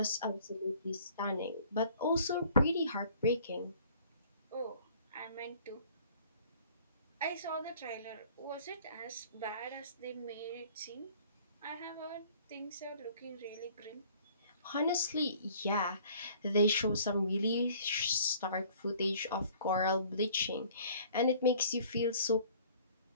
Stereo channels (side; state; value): both; inverted; correlation -0.54